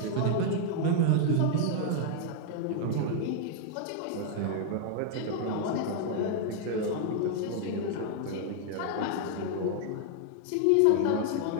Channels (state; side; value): different; both; correlation 0.00